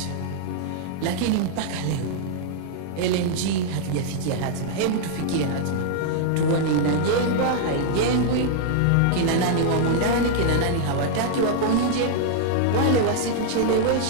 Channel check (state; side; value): different; both; correlation -0.01